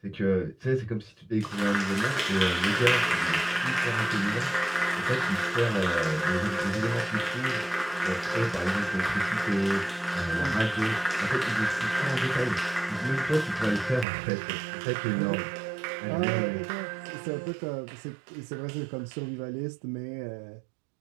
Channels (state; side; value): drops out; left; at 14.1 s